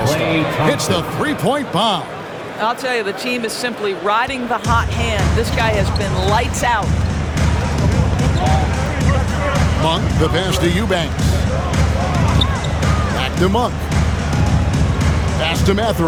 Hits the three-point bomb. I'll tell you, the team is simply riding the hot hand. This guy has been lights out. Monk, the pass to Eubanks. Back to Monk. Pass to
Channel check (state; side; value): identical; both; correlation 1.00